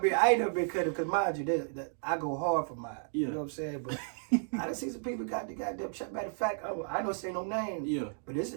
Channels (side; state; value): left; silent; digital silence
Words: I ain't never been cut because mind you, that I go hard for mine. Yeah. You know what I'm saying? But I done seen some people got the goddamn shot. Matter of fact, I don't say no names. Yeah. But this